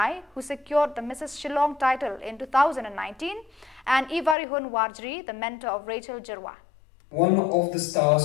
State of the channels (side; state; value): right; drops out; at 4.4 s